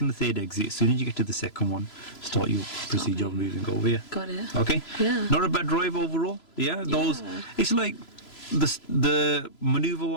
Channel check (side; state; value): right; late; 3.0 ms